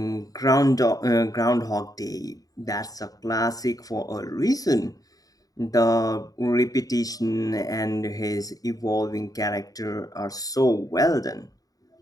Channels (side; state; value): right; late; 0.18 ms